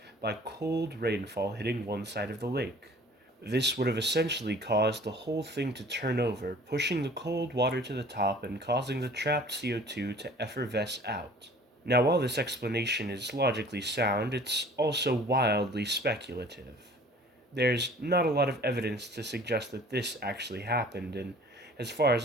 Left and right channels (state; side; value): normal; both; correlation 0.49